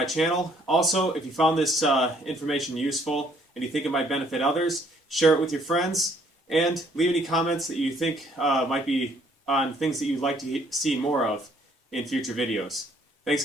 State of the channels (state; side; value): normal; both; correlation 0.64